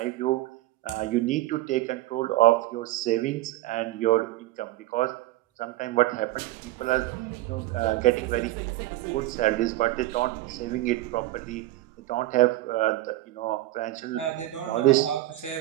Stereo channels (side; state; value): left; quieter; 16.6 dB